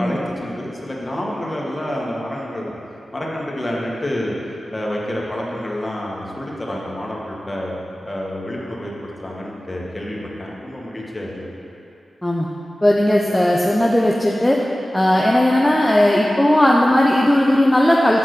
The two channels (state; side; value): normal; both; correlation 0.96